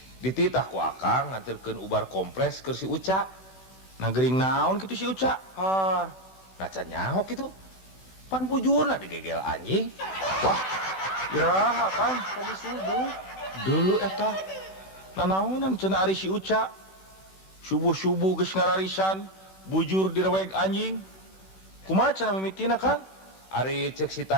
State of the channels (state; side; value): late; right; 16 ms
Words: dititah ku akang nganterkeun ubar kompres keur si Uca nah geuring naon kitu si Uca har nah can nyaho kitu pan bujurna digegel anjing wah iraha Kang tadi subuh dulu eta nanaonan cenah ari si Uca subuh-subuh geus ngararisan bujur direweg anjing kumaha cenah mimitina Kang ari ceuk si